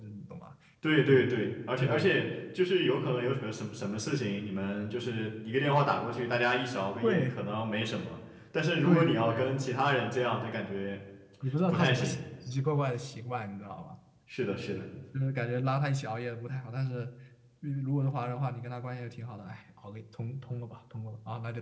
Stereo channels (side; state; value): both; identical; correlation 1.00